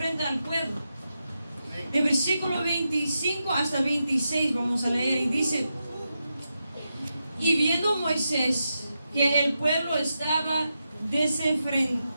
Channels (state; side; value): inverted; both; correlation -0.87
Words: al pueblo. De versículo 25 hasta 26 vamos a leer, y dice: y viendo Moisés que el pueblo estaba